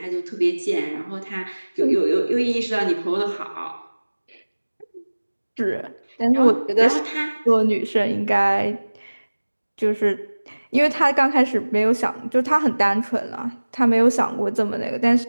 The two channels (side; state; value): both; inverted; correlation -1.00